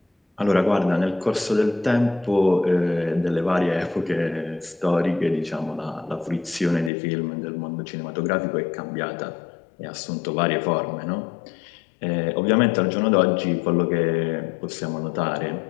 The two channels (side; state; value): right; drops out; at 6.9 s